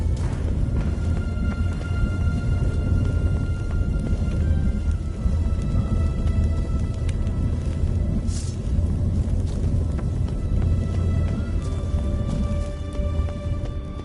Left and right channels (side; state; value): both; identical; correlation 1.00